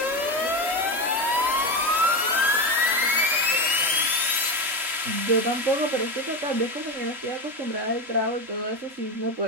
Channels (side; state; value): left; late; 3.8 ms